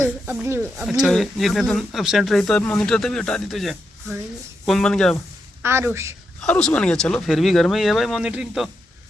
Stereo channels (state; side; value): normal; both; correlation 0.84